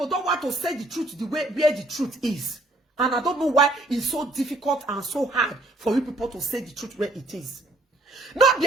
don't want to say the truth the way where the truth is. And I don't know why it's so difficult and so hard for you people to say the truth where it is. Not be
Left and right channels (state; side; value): normal; both; correlation 0.65